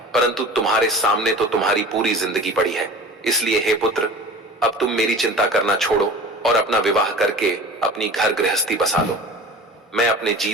परंतु तुम्हारे सामने तो तुम्हारी पूरी जिंदगी पड़ी है। इसलिए हे पुत्र, अब तुम मेरी चिंता करना छोड़ो और अपना विवाह करके अपनी घर गृहस्थी बसा लो। मैं अपने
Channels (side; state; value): both; normal; correlation 0.39